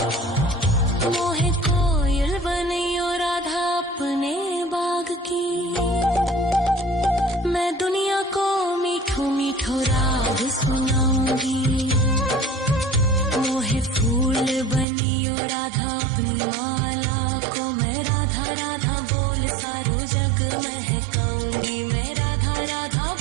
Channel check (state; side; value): drops out; left; at 14.9 s